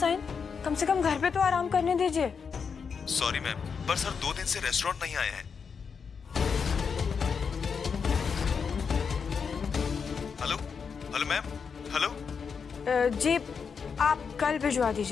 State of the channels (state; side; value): quieter; right; 6.0 dB